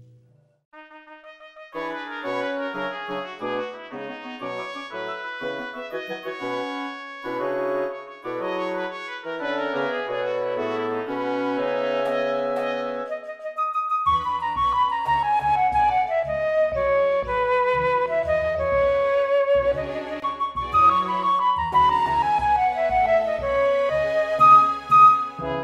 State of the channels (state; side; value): identical; both; correlation 1.00